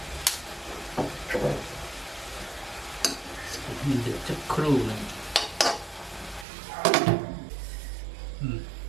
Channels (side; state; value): left; drops out; at 6.5 s